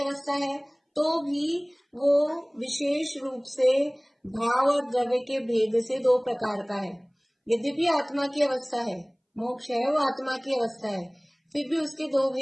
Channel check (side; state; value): both; identical; correlation 1.00